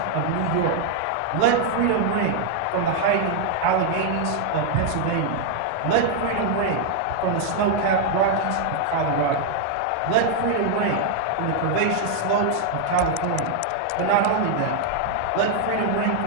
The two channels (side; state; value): both; different; correlation 0.00